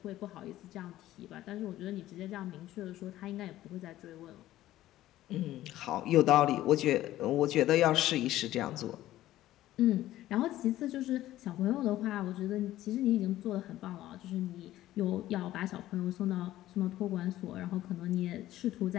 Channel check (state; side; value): quieter; right; 14.5 dB